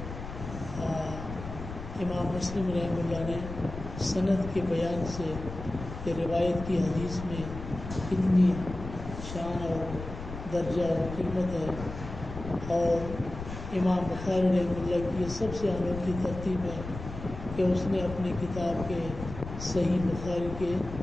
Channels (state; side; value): noise; left; rumble, 10 dB below the sound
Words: امام مسلم رحمہ اللہ نے سند کے بیان سے کہ روایت کی حدیث میں کتنی شان اور درجہ اور قیمت ہے، اور امام بخاری رحمہ اللہ کی یہ سب سے انوکھی ترتیب ہے کہ اس نے اپنی کتاب کے صحیح بخاری کے